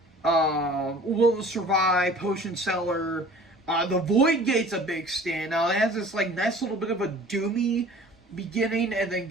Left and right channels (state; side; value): normal; both; correlation 0.47